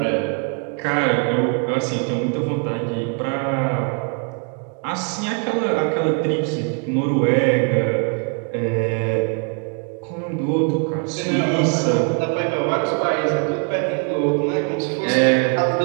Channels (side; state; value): left; quieter; 38.2 dB